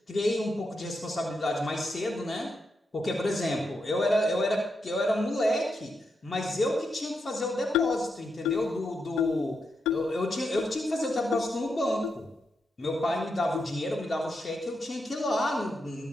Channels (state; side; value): normal; both; correlation 0.84